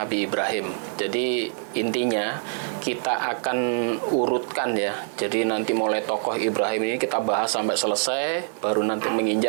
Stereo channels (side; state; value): left; silent; 62 dB below the other